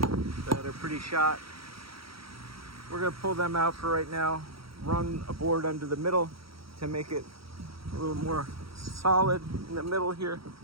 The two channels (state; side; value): late; left; 0.75 ms